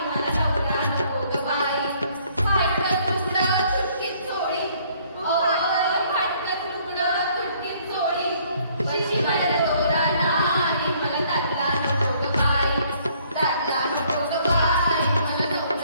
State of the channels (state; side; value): inverted; both; correlation -0.63